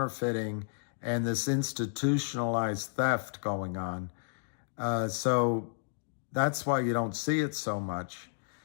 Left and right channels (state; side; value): silent; right; digital silence